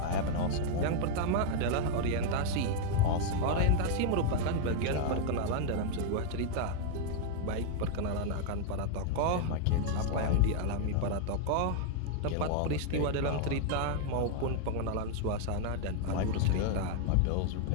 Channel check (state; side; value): different; both; correlation 0.00